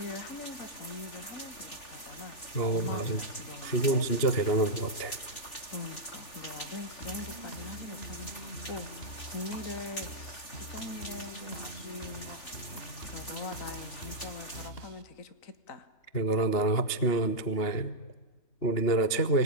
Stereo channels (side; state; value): right; late; 3.4 ms